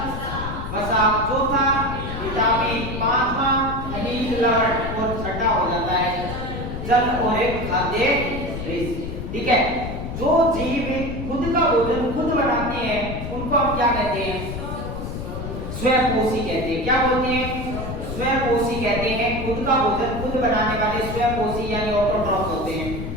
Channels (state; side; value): noise; left; rumble, 6 dB below the sound